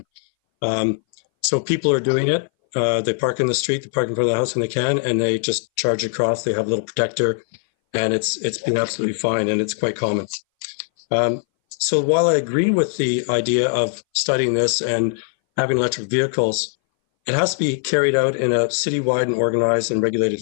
So people are doing it. They park in the street, they park in front of the house when they can, and they just charge across. They have a little protector, and it's been absolutely fine, and it's quite common. So while I agree with the idea of studying this and having electric vehicles, it has to be carried out in a citywide and organized and regulated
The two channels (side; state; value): right; silent; 61 dB below the other